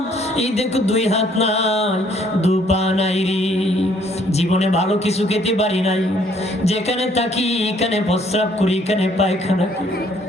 এই দেখো 2 হাত নাই 2 পা নাই রে, জীবনে ভালো কিছু খেতে পারি নাই, যেখানে থাকি এখানে প্রস্রাব করি, এখানে পায়খানা করি,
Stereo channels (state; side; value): normal; both; correlation 0.63